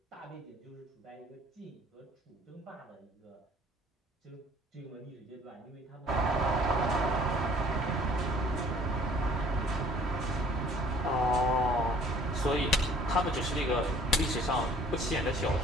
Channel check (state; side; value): normal; both; correlation 0.54